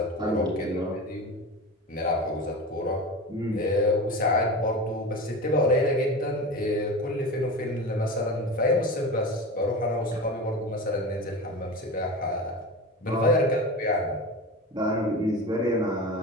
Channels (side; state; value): both; normal; correlation 0.29